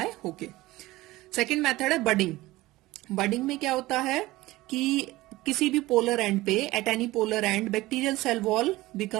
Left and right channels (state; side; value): quieter; left; 18.5 dB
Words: होके. सेकेंड मेथड है बडिंग. बडिंग में क्या होता है कि किसी भी पोलर एंड पे, at any polar end, bacterial cell wall